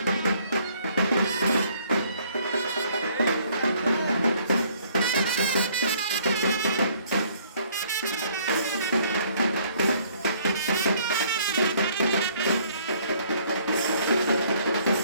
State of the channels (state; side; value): inverted; both; correlation -0.62